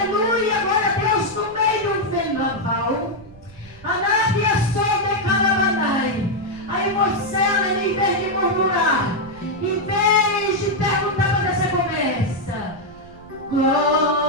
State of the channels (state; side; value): noise; right; rumble, 22 dB below the sound